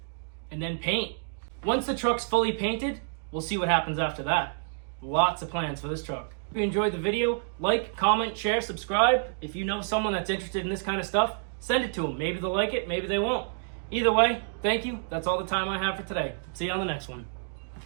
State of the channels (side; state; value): left; silent; digital silence